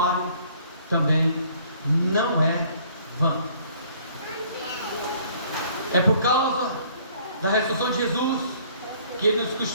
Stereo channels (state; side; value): inverted; both; correlation -0.58